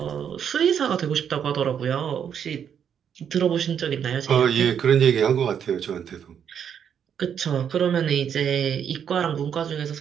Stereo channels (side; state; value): left; quieter; 8.3 dB